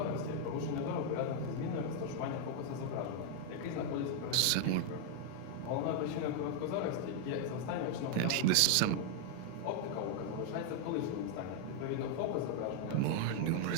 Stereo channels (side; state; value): both; different; correlation 0.00